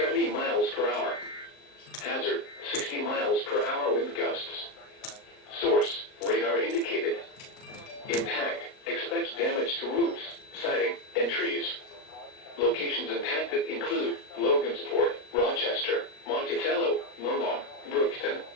miles per hour. Hazard, 60 miles per hour wind gusts. Source, radar indicated. Impact, expects damage to roofs, siding, and trees. Locations impacted include Logansport, Rochester, Monticello, Monmouth, Brookston,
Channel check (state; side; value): late; right; 38 ms